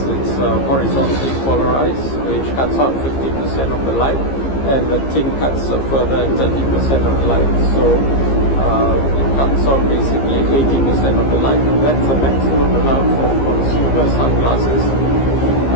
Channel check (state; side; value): late; right; 15 ms